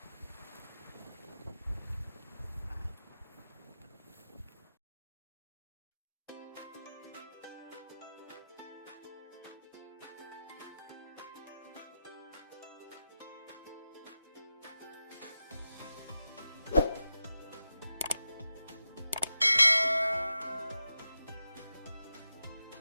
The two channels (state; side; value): inverted; both; correlation -0.91